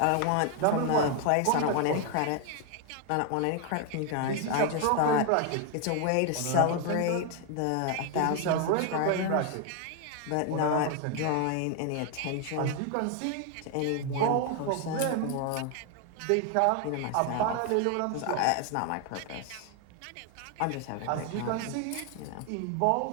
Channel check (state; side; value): different; both; correlation 0.01